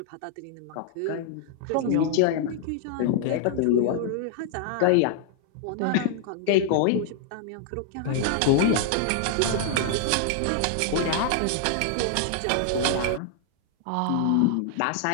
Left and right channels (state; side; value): different; both; correlation 0.00